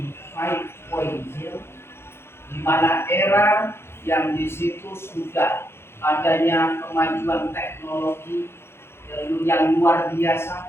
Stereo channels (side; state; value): right; late; 0.12 ms